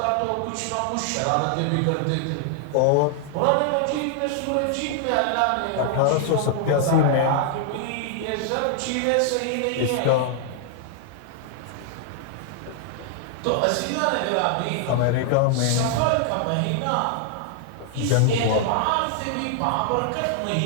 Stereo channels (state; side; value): different; both; correlation 0.00